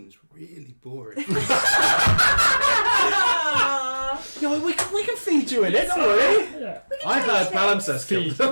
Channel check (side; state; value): both; inverted; correlation -1.00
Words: really boring. No, we can feed you in it, don't worry. Yeah. I've heard palimpsest Feed,